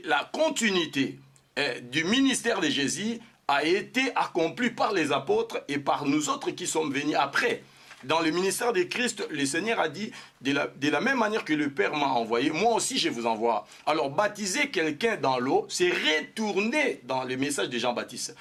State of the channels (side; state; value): both; identical; correlation 1.00